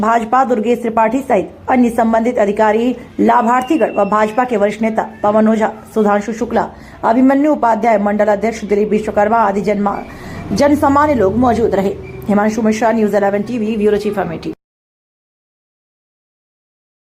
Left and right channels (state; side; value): identical; both; correlation 1.00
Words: दुर्गेश त्रिपाठी सहित अन्य संबंधित अधिकारी, लाभार्थीगण व भाजपा के वरिष्ठ नेता पवन ओझा, सुधांशु शुक्ला, अभिमन्यु उपाध्याय, मंडल अध्यक्ष दिलीप विश्वकर्मा आदि जन सामान्य लोग मौजूद रहे। Himanshu Mishra, news 11 TV, bureau chief Amethi.